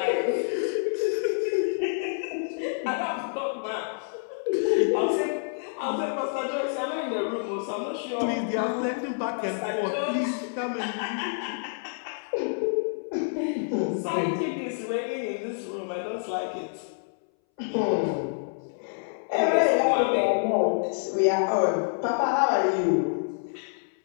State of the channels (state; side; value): silent; right; 60 dB below the other